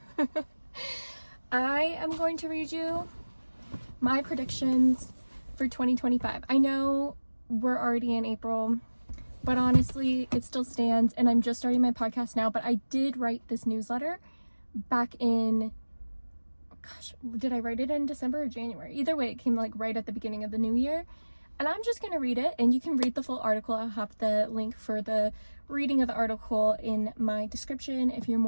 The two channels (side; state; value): both; inverted; correlation -1.00